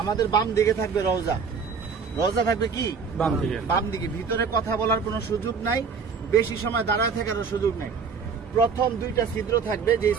আমাদের বাম দিকে থাকবে রওজা। রওজা থাকবে কি বাম দিকে। ভিতরে কথা বলার কোনো সুযোগ নাই, বেশি সময় দাঁড়ায় থাকারও সুযোগ নাই। প্রথম দুইটা ছিদ্র থাকবে, যে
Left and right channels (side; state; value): left; quieter; 5.6 dB